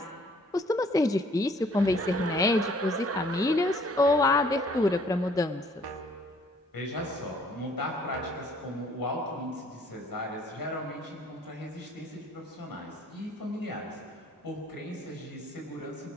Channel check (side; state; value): both; normal; correlation 0.60